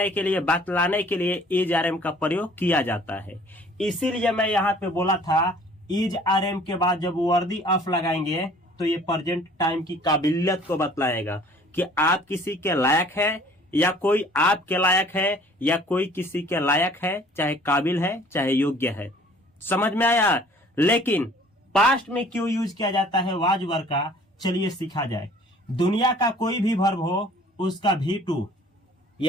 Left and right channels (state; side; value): normal; both; correlation 0.53